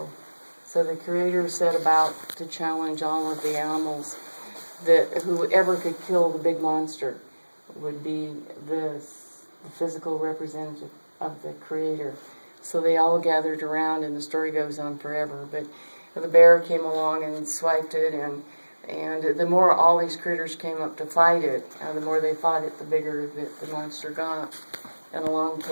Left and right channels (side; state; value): both; inverted; correlation -1.00